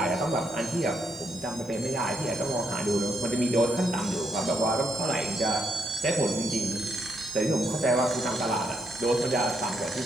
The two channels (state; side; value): normal; both; correlation 0.77